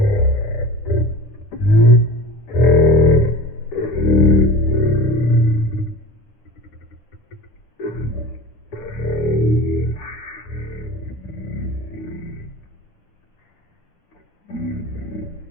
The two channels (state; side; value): late; right; 10 ms